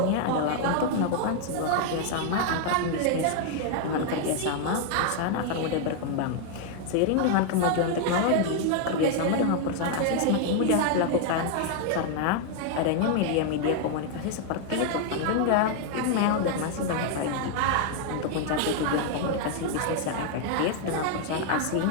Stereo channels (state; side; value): different; both; correlation 0.00